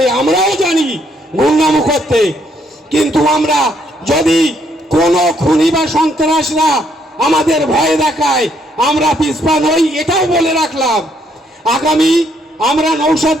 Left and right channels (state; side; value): normal; both; correlation 0.71